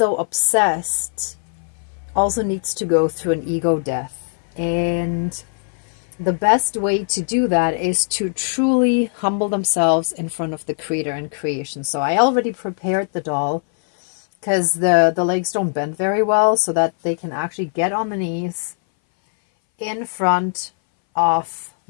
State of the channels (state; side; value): silent; right; 61 dB below the other